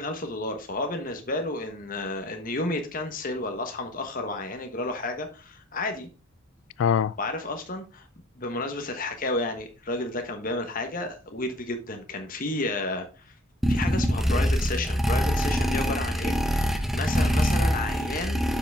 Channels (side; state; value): both; normal; correlation 0.59